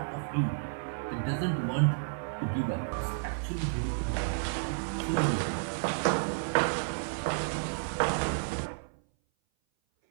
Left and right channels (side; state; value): left; silent; 57 dB below the other